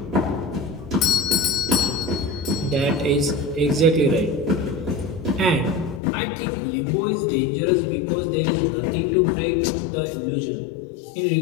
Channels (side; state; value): right; drops out; at 6.0 s